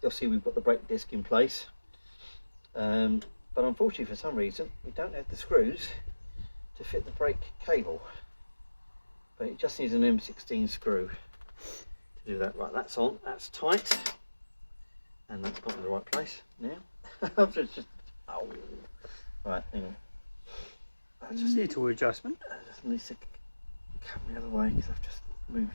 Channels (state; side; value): inverted; both; correlation -1.00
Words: You'll see we've got the brake disc in place, but unfortunately for some reason we don't have the screws to fit the brake cable, but it just needs an M16 screw to do that. Right, that's on, that's tight, and that's got in the right place now. just, oh, right, hang on. That's just a little adjustment. I just need to come the other way because I've just